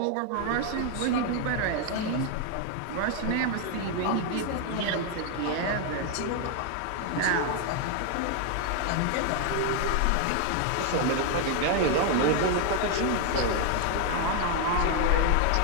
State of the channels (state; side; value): different; both; correlation 0.00